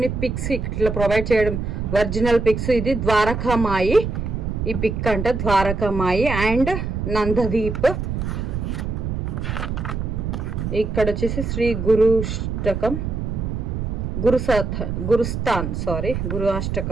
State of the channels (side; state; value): right; noise; rumble, 3 dB below the sound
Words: పిక్స్ ఇట్లా ప్రొవైడ్ చేయడం, ఒరిజినల్ పిక్స్. ఇది ద్వారకామాయి, ఈ పిక్ అంట ద్వారకామాయి అండ్ నందదీప్. ఇక్కడ వచ్చేసి శ్రీ గురు